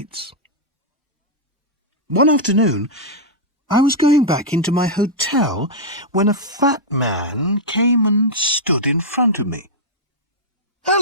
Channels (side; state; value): both; normal; correlation -0.06